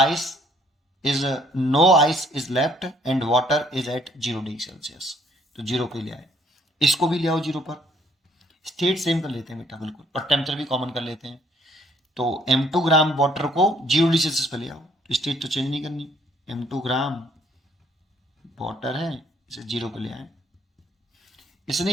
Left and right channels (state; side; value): normal; both; correlation 0.63